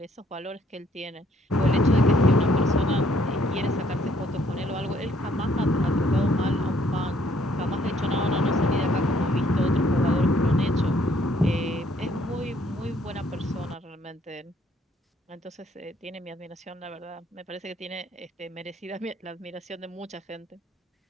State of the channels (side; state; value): both; normal; correlation 0.65